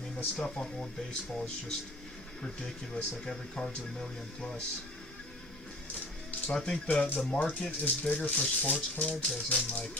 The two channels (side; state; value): both; normal; correlation 0.44